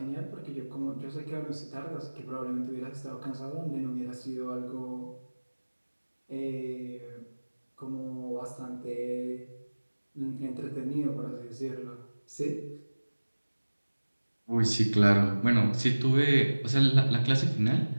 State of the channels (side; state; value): both; inverted; correlation -1.00